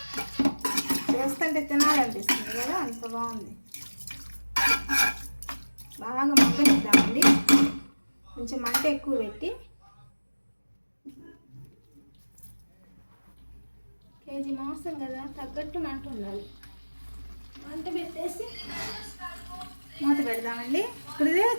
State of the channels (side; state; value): both; inverted; correlation -1.00